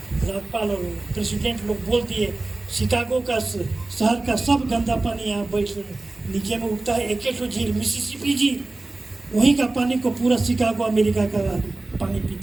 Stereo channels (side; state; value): left; quieter; 3.1 dB